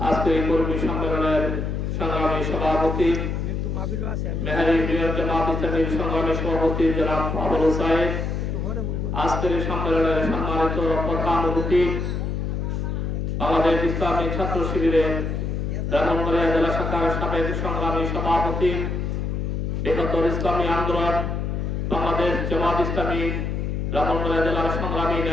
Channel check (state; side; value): noise; left; hum, 2 dB below the sound